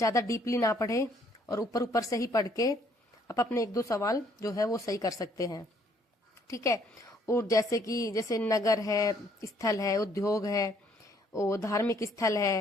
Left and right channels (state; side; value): normal; both; correlation 0.65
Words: डीपली ना पढ़े, और ऊपर ऊपर से ही पढ़ के आप अपने 1-2 सवाल जो है वो सही कर सकते हैं, ठीक है। और जैसे नगर है, स्थल है, उद्योग है, और धार्मिक स्थल